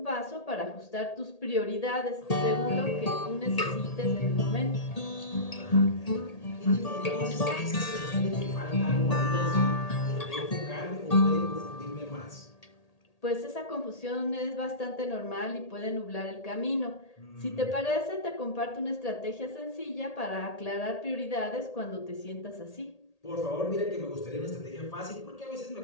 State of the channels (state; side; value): late; right; 1.8 ms